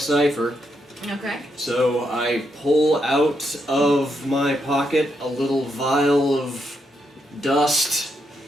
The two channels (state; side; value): normal; both; correlation 0.80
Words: Okay. So I pull out of my pocket a little vial of dust